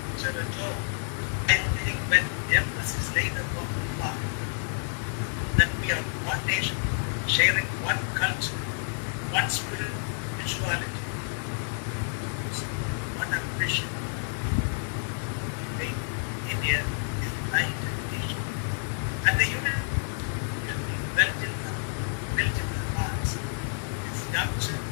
at all. I think when emphasis is laid upon the fact that we are one nation, sharing one culture, one spirituality, one ambition to make India a united nation. And the unity will be built in the hearts. It's young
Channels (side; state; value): right; silent; digital silence